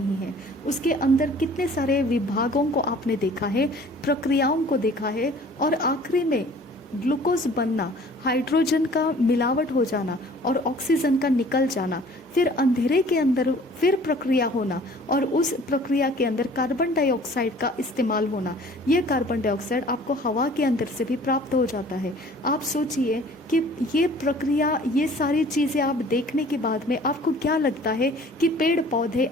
है, उसके अंदर कितने सारे विभागों को आपने देखा है, प्रक्रियाओं को देखा है और आखिरी में ग्लूकोज बनना, हाइड्रोजन का मिलावट हो जाना और ऑक्सीजन का निकल जाना, फिर अंधेरे के अंदर फिर प्रक्रिया होना और उस प्रक्रिया के अंदर कार्बन डाइऑक्साइड का इस्तेमाल होना। ये कार्बन डाइऑक्साइड आपको हवा के अंदर से भी प्राप्त हो जाता है। आप सोचिए कि ये प्रक्रिया, ये सारी चीज़ें आप देखने के बाद में आपको क्या लगता है कि पेड़ पौधे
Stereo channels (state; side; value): normal; both; correlation 0.51